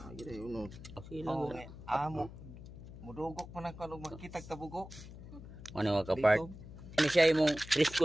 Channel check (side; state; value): left; noise; hum, 14 dB below the sound